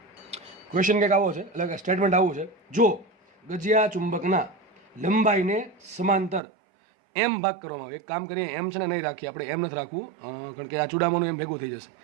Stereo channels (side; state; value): left; drops out; at 6.4 s